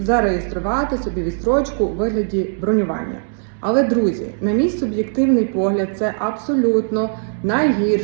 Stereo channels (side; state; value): left; silent; 65 dB below the other